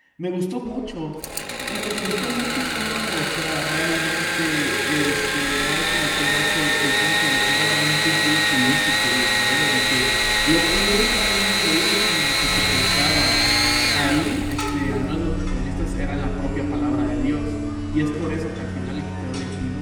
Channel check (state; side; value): identical; both; correlation 1.00